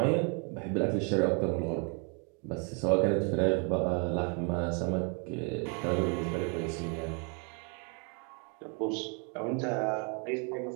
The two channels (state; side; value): quieter; left; 36.1 dB